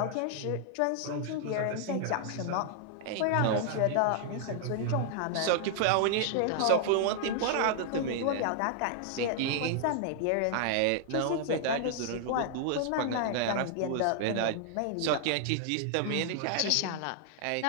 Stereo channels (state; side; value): different; both; correlation 0.00